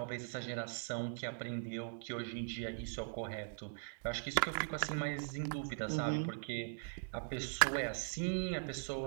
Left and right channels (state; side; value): silent; left; digital silence